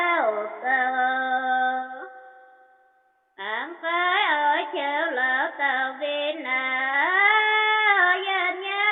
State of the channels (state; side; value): identical; both; correlation 1.00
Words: cơ ám phái ở chiều lỡ tàu viên dân